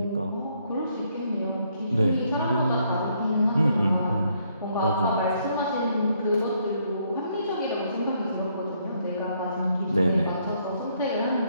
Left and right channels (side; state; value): both; inverted; correlation -0.71